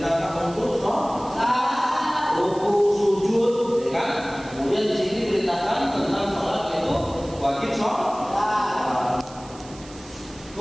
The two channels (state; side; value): noise; right; hiss, 20 dB below the sound